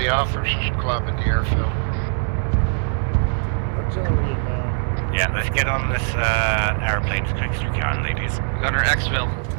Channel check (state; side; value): silent; left; digital silence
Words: officers club at the airfield. Artillery inbound. Yeah, let's get on this airplane as quick as we can, ladies. Gunner Xville.